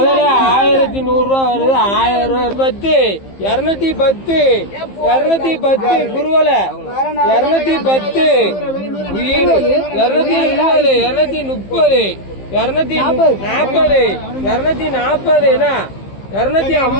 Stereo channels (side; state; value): right; late; 15 ms